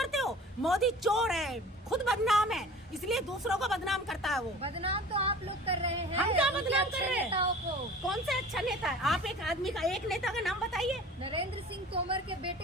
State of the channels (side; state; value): both; normal; correlation 0.42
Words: हो। मोदी चोर है, खुद बदनाम है, इसलिए दूसरों को बदनाम करता है वो। बदनाम तो आप लोग कर रहे हैं। हम क्या उनके बदनाम अच्छे कर रहे हैं? नेताओं को। कौन से अच्छा नेता है? आप एक आदमी का, एक नेता का नाम बताइए। नरेंद्र सिंह तोमर के